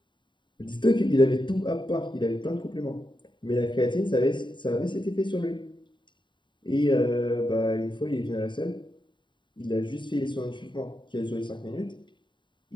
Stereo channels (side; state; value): right; late; 0.23 ms